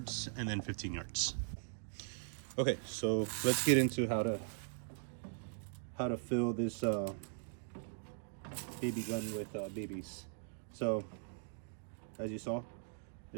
and then 15 yards. Okay, so let's get into how to fill this BB gun with BBs. So, as you saw,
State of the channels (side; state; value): left; silent; digital silence